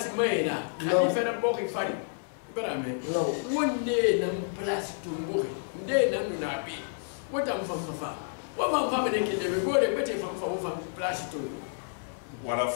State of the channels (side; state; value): right; silent; 58 dB below the other